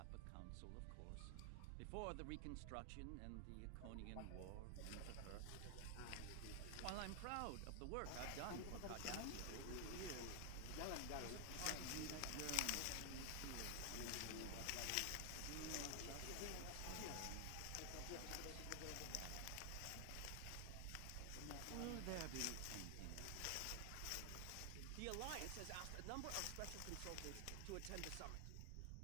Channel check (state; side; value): different; both; correlation 0.00